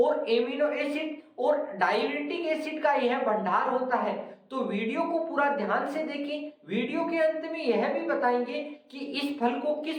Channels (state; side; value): identical; both; correlation 1.00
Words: एमिनो एसिड और डाययूरेटिक एसिड का यह भंडार होता है। तो वीडियो को पूरा ध्यान से देखें। वीडियो के अंत में यह भी बताएंगे कि इस फल को किस